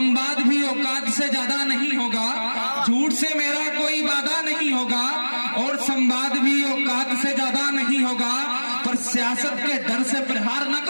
भी औकात से ज्यादा नहीं होगा। झूठ से मेरा कोई वादा नहीं होगा और संवाद भी औकात से ज्यादा नहीं होगा, पर सियासत के डर से प्रहार न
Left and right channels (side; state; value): both; inverted; correlation -1.00